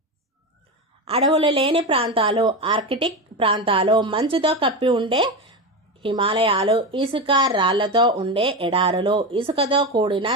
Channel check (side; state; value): both; normal; correlation 0.18